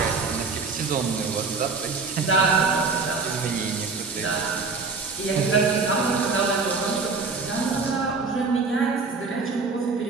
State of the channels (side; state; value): left; quieter; 4.4 dB